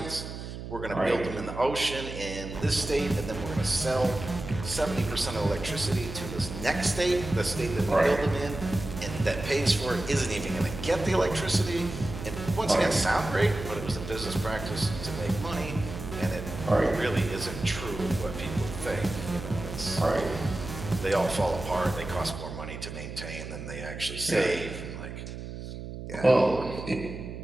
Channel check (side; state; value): right; noise; hum, 9 dB below the sound